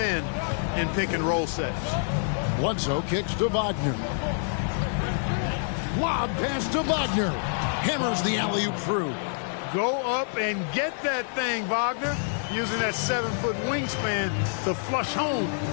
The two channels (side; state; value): right; silent; digital silence